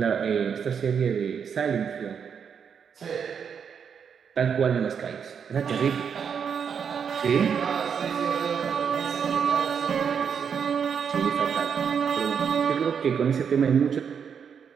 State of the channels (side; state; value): left; quieter; 7.1 dB